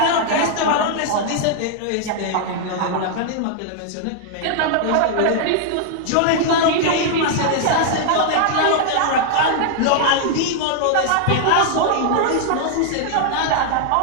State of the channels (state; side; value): different; both; correlation 0.00